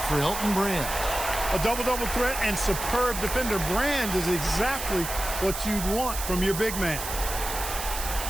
for Elton Brand. A double-double threat and superb defender. Brand is exactly what you'd want from your big man.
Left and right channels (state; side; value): noise; right; hiss, 6 dB below the sound